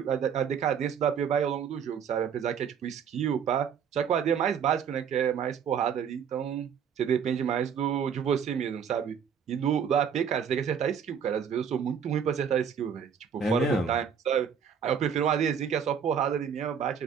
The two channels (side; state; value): left; quieter; 7.4 dB